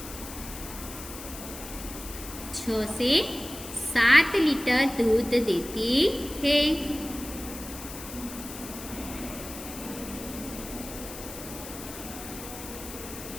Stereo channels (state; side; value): noise; left; hiss, 12 dB below the sound